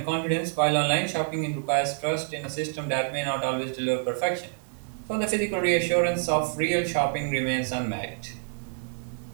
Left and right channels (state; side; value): silent; left; digital silence